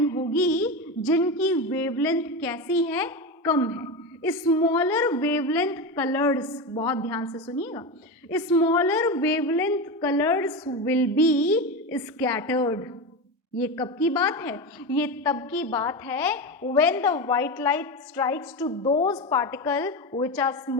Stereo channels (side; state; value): both; normal; correlation 0.19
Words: होगी जिनकी वेवलेंथ कैसी है? कम है। स्मॉलर वेवलेंथ कलर्स, बहुत ध्यान से सुनिएगा, smaller wavelength colours will be scattered. ये कब की बात है? ये तब की बात है when the white light strikes to those particles which are